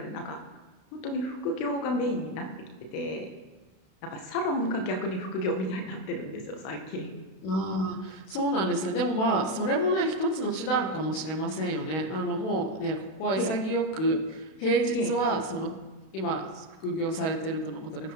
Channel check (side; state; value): right; late; 32 ms